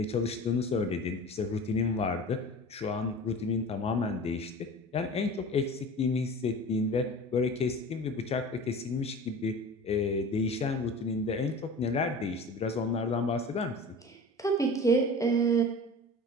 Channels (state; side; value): normal; both; correlation 0.37